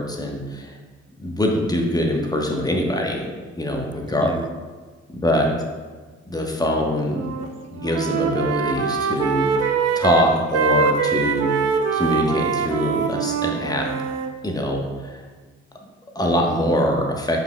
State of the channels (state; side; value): normal; both; correlation 0.37